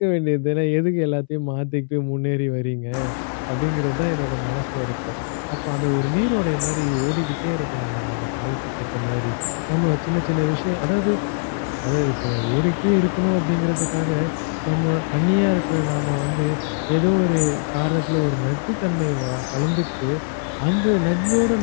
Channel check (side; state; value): right; silent; 64 dB below the other